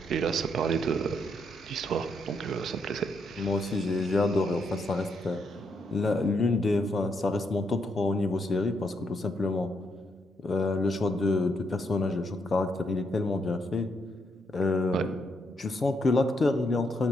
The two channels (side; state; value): both; normal; correlation 0.77